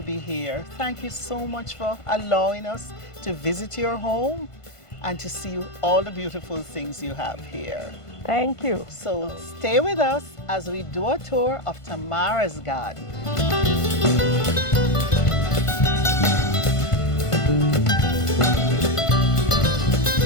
be here. Thank you so much for allowing us to visit your home and to see all the beautiful things you have here. Thank you. So stay with us as we do a tour of Tamara's garden.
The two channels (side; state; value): right; late; 1.5 ms